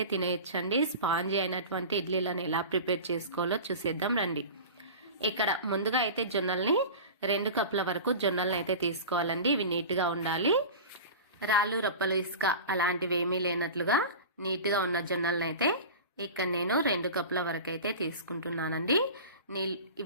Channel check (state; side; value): inverted; both; correlation -0.33